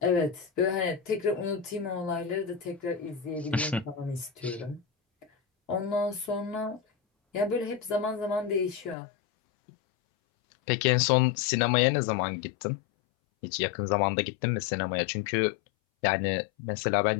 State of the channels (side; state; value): right; drops out; at 9.0 s